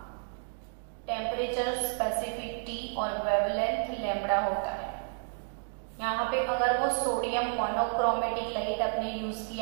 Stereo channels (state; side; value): silent; left; digital silence